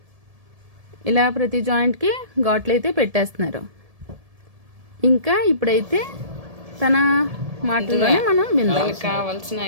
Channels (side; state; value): left; late; 1.7 ms